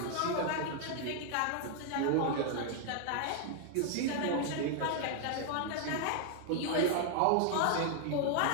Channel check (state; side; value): different; both; correlation 0.00